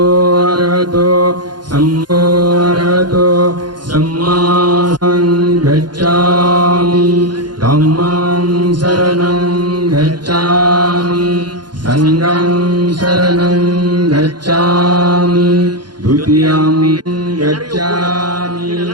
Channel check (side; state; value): left; late; 0.71 ms